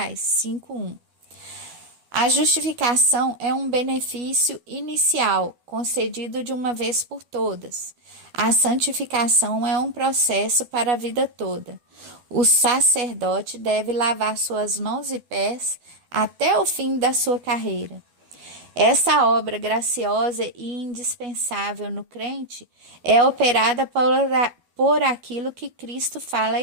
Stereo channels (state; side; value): late; left; 12 ms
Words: 5:1. A justificação é um benefício inicial, concedido de uma vez por todas. A santificação é um processo para a vida toda. O sacerdote deve lavar suas mãos e pés até o fim da sua carreira. Essa obra graciosa e indispensável no crente é operada por aquilo que Cristo fala à